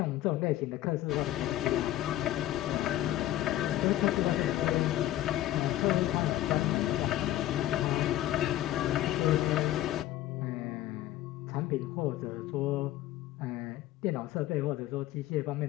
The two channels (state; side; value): quieter; right; 14.0 dB